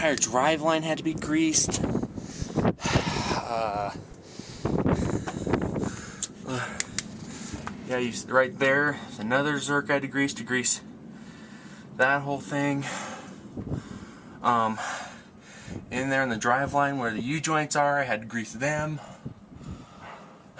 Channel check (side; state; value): both; identical; correlation 1.00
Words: drive line had to be greased. Yeah, right there, another Zerk I had to grease that whole thing. In there in the drive line where the U-joints are, I had to grease them.